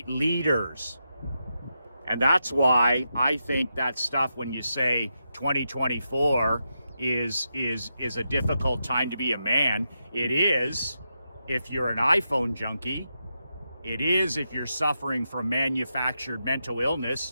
leaders. And that's why I think that stuff, when you say 2024 is a difficult time to be a man, it is if you're an iPhone junkie. It is if you're suffering from manufactured mental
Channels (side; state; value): both; inverted; correlation -0.86